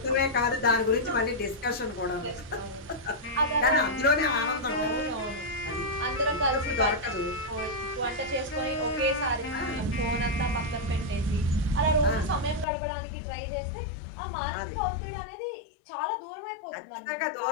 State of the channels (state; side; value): drops out; right; at 12.7 s